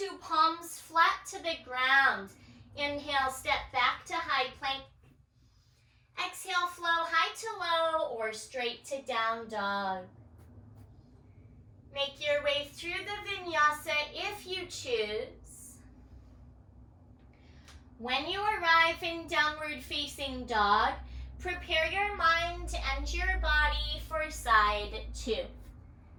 palms flat to the ground. Inhale, step back to high plank. Exhale, flow high to low or straight to down dog. Make your way through the vinyasa if you choose. When you arrive in downward facing dog, prepare your mind and your body for side 2.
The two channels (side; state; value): both; identical; correlation 1.00